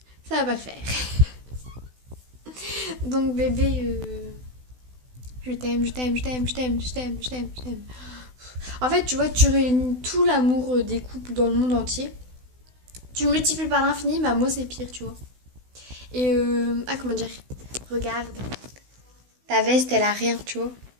Ça va pas le faire. Donc, bébé, je t'aime. En fait, tu vois, tu réunis tout l'amour des couples dans le monde entier. Tu le multiplies par l'infini, bah moi c'est pire, tu vois. Et comment dire? Regarde. Ta veste, elle a rien, tu vois.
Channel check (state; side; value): late; left; 16 ms